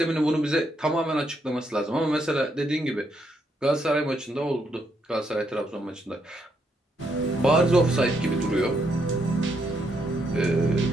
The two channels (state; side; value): normal; both; correlation 0.77